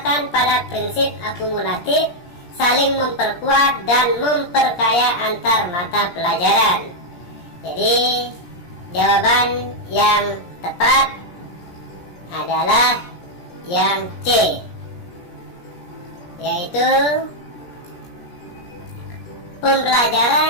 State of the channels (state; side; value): late; right; 17 ms